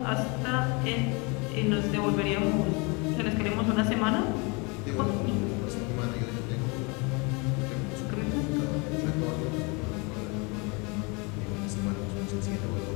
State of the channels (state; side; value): quieter; right; 30.0 dB